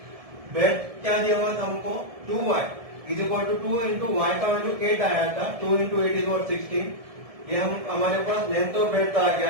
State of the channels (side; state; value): left; late; 1.7 ms